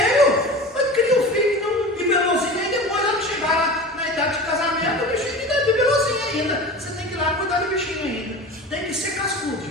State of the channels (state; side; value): normal; both; correlation 0.33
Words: Mas cria um filho bibelozinho, e depois ela chegar na idade de casamento, o bichinho ainda é bibelozinho ainda. Você tem que ir lá cuidar do bichinho ainda. Tem que ser cascudo,